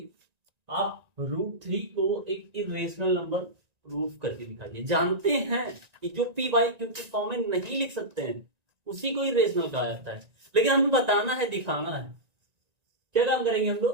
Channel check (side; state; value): left; late; 1.9 ms